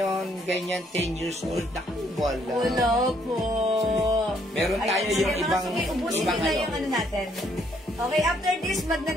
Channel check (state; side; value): normal; both; correlation 0.68